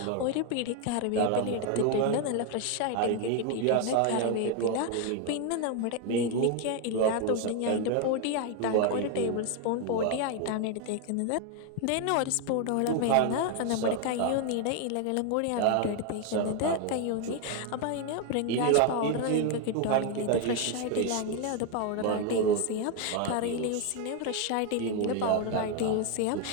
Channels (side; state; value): both; different; correlation 0.01